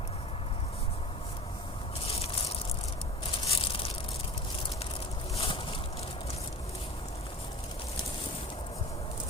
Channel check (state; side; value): normal; both; correlation 0.39